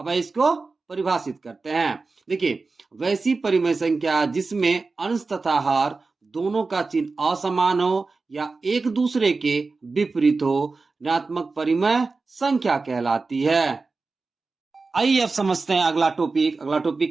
इसको परिभाषित करते हैं। देखिए, वैसी परिमेय संख्या जिसमें अंश तथा हर दोनों का चिन्ह असमान हो या एक दूसरे के विपरीत हो, ऋणात्मक परिमेय संख्या कहलाती है। आइए अब समझते हैं अगला टॉपिक। अगला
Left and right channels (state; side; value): quieter; left; 4.0 dB